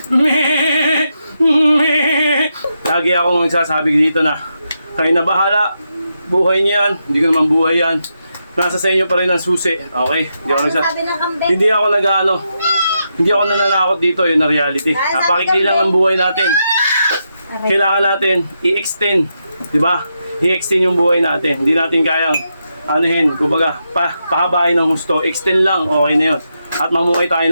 Lagi akong nagsasabi dito na kayo na bahala, buhay niyo yan, hindi ko naman buhay yan. Nasa sa inyo pa rin ang susi, okay? Hindi ako hindi ako nananakot dito, yun na reality. Napakikli lang ng buhay natin. Kailangan natin i-extend, di ba? I-extend yung buhay natin. Hindi natin kayang anuhin, kumbaga, pahabain ng husto. Extend lang, okay na yun. At mamuhay tayo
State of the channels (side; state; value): both; inverted; correlation -0.84